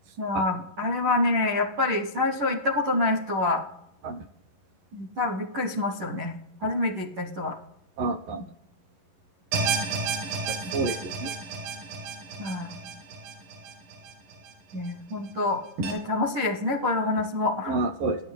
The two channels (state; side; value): late; left; 10 ms